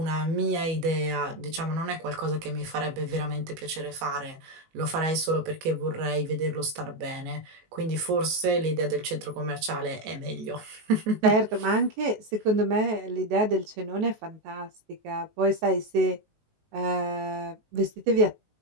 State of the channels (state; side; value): late; left; 19 ms